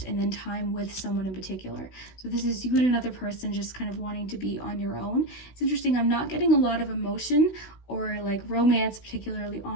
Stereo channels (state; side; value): late; right; 16 ms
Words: and then time with someone in particular. So this is you and another person just kind of wanting to be on your own. It's interesting. I'm not getting a lot of emotion or like romance, particularly